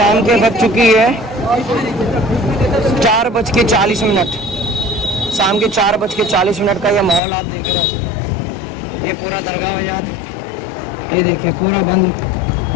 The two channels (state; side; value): drops out; right; at 7.2 s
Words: के बज चुकी है 4:40। शाम के 4:40 का ये माहौल आप देख रहे हो। ये पूरा दरगाह बाजार ये देखिए पूरा बंद